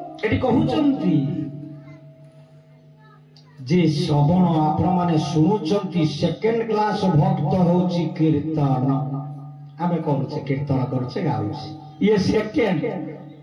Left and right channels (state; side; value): identical; both; correlation 1.00